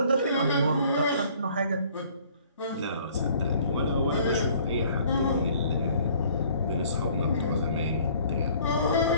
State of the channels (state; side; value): inverted; both; correlation -0.56